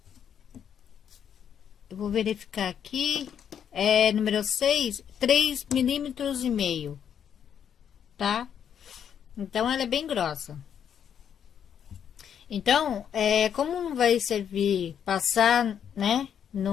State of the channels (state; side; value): quieter; right; 8.5 dB